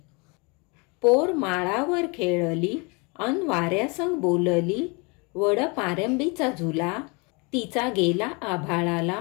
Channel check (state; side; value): quieter; right; 30.3 dB